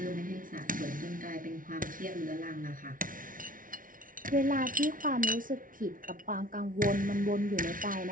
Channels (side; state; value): left; late; 0.39 ms